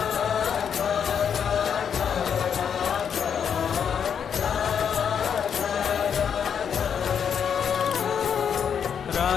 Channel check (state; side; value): quieter; right; 7.6 dB